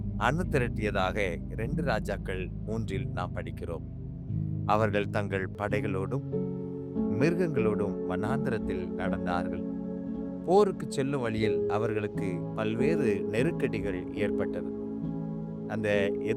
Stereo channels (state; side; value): identical; both; correlation 1.00